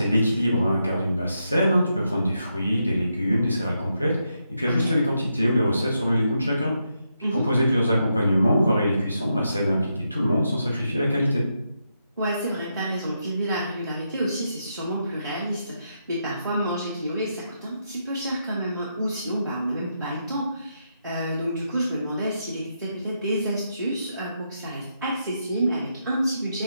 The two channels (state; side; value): inverted; both; correlation -0.82